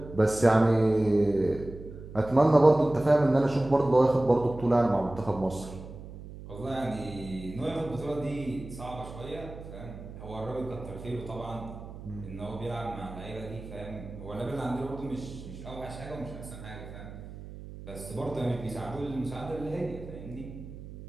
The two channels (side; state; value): right; noise; hum, 13 dB below the sound